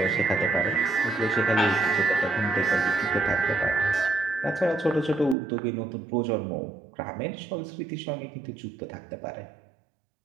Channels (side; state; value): left; drops out; at 5.4 s